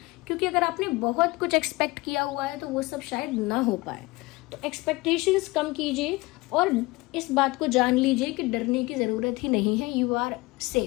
क्योंकि अगर आपने बहुत कुछ एक्सपेक्ट किया हुआ है तो वो सब शायद ना हो पाए। तो एक्सपेक्टेशंस कम कीजिए और इस बात को जान लीजिए कि डरने की ज़रूरत ही नहीं है, you are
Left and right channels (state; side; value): quieter; right; 22.4 dB